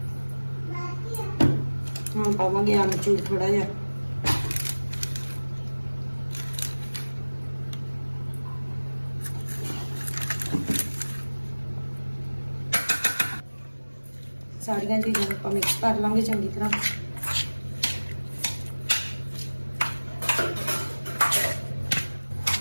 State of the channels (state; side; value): inverted; both; correlation -1.00